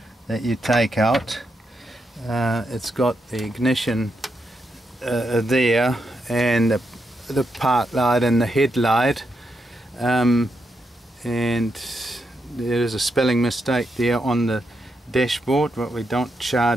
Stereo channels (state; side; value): normal; both; correlation 0.83